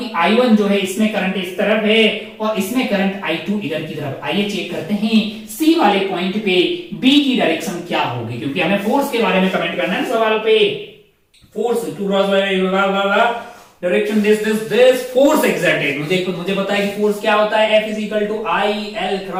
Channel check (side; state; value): both; identical; correlation 1.00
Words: I1 जो है इसमें करंट इस तरफ है और इसमें करंट I2 इधर की तरफ। आइए चेक करते हैं C वाले पॉइंट पे B की डायरेक्शन क्या होगी, क्योंकि हमें फोर्स के बारे में कमेंट करना है सवाल पे। Force direction this force exerted, मुझे पता है कि फोर्स क्या होता है, F is equal to I L